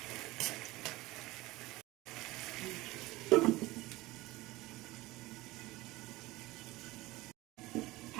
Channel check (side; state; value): left; quieter; 19.6 dB